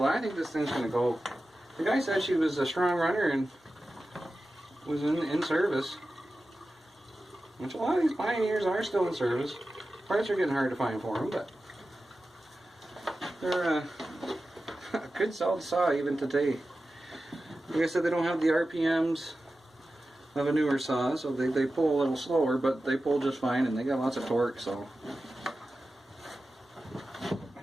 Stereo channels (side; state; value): both; normal; correlation 0.94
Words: I think this thing's going to go. The guy said she was a strong runner and was in service. Which a lot of these Pioneers are still in service. Parts are getting hard to find for them, but they're a good solid saw even today. Like I said, they don't have the RPMs of a newer saw, so they pull a little slower, but they pull just fine, and they got lots of torque, so